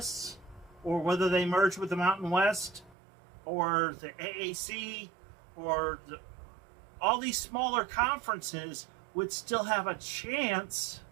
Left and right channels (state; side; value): drops out; left; at 3.0 s